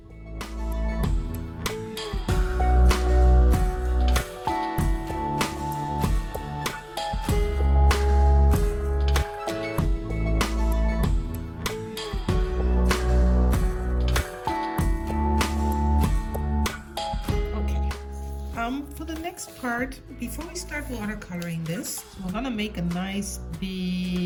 For the next part, before we start watercoloring this, we're gonna make a nice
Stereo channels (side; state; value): both; identical; correlation 1.00